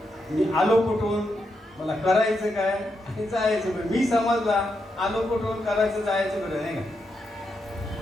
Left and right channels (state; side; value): normal; both; correlation 0.83